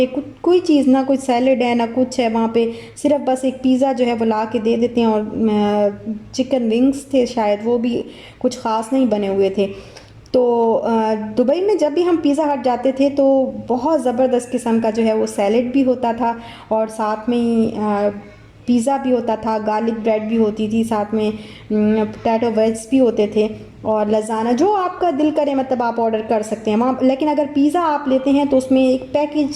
कोई चीज़, ना कोई सैलेड है ना कुछ है वहाँ पे, सिर्फ बस एक पिज़्ज़ा जो है वो ला के दे देते हैं, और चिकन विंग्स थे शायद, वो भी कुछ ख़ास नहीं बने हुए थे। तो दुबई में जब भी हम पिज़्ज़ा हट जाते थे तो बहुत ज़बरदस्त किस्म का जो है वो सैलेड भी होता था, और साथ में ही पिज़्ज़ा भी होता था, गार्लिक ब्रेड भी होती थी, साथ में पोटैटो वेज भी होते थे, और लज़ाना जो आपका दिल करे मतलब आप ऑर्डर कर सकते हैं वहाँ। लेकिन अगर पिज़्ज़ा आप लेते हैं तो उसमें एक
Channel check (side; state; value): both; identical; correlation 1.00